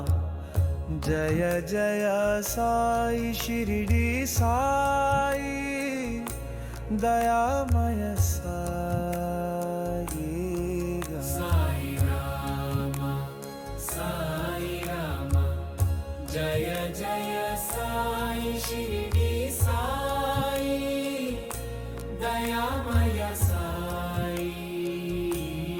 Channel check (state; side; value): identical; both; correlation 1.00